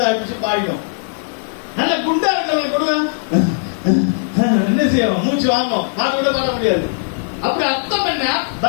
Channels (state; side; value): silent; right; 67 dB below the other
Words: அடிச்சு பாடிடும். நல்ல குண்டா இருக்கிறவங்க கொடுங்க, என்ன செய்வோம்? மூச்சு வாங்கும், பாட்டு கூட பாட முடியாது. அப்படி அர்த்தம் என்ன?